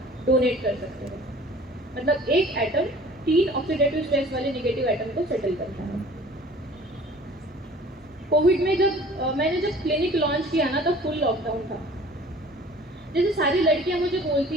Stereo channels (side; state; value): both; normal; correlation 0.48